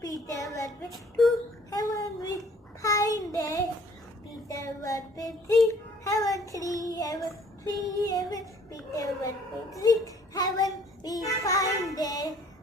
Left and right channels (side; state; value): both; normal; correlation 0.57